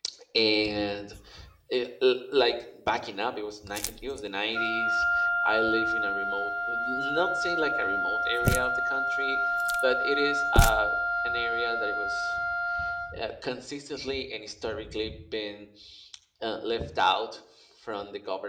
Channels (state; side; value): identical; both; correlation 1.00